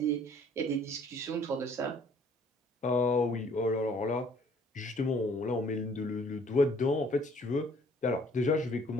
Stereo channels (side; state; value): both; normal; correlation 0.58